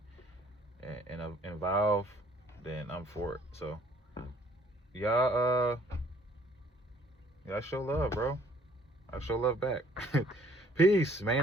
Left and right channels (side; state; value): both; normal; correlation 0.59